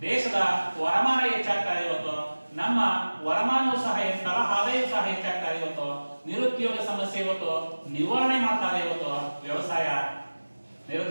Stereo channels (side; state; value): both; inverted; correlation -1.00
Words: ದೇಶದ ವರಮಾನ ಹೆಚ್ಚಾಗ್ತಾ ಇದೆ ಇವತ್ತು. ನಮ್ಮ ವರಮಾನವೂ ಸಹ ಹೆಚ್ಚಾಗಲ್ಲ, ಆದಾಯವೂ ಸಹ ಹೆಚ್ಚಾಗ್ತಾ ಇದೆ ಇವತ್ತು. ನಿರುದ್ಯೋಗ ಸಮಸ್ಯೆ ಇವತ್ತು ನಿವಾರಣೆ ಮಾಡ್ತಾರೆ ಇವತ್ತು ವ್ಯವಸಾಯ.